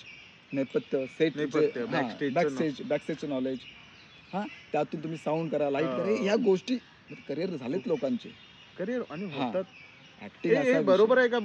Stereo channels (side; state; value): both; identical; correlation 1.00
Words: नेपथ्य सेट बॅकस्टेजचं नॉलेज, हां त्यातून तुम्ही साऊंड करा, लाईट करा, ह्या गोष्टी करिअर झालेत लोकांचे करिअर आणि हा. होतात. ऍक्टिंग असा बरोबर आहे का